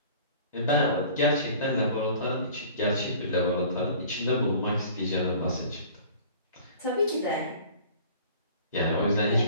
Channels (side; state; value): both; inverted; correlation -0.47